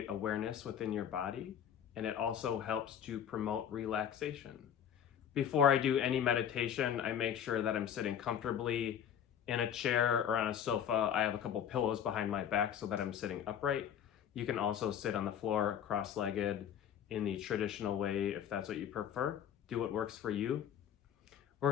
awareness within your body, and it also helps to promote relaxation. Before I do any meditation, I make sure that I'm sitting comfortably in a chair or on a sofa. I have a couple pillows behind my back so that I'm sitting upright. You can also sit on the floor cross-legged in the traditional way if that's what you prefer. Do what works for you.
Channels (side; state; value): right; quieter; 9.0 dB